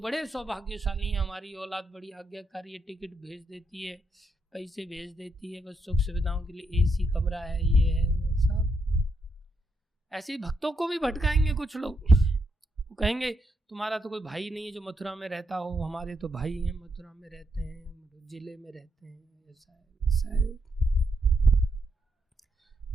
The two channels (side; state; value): both; normal; correlation 0.80